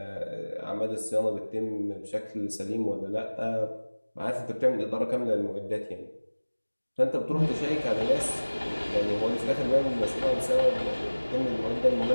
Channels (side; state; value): both; inverted; correlation -1.00